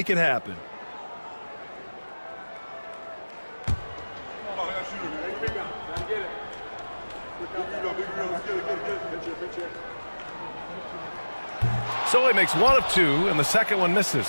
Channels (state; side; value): inverted; both; correlation -1.00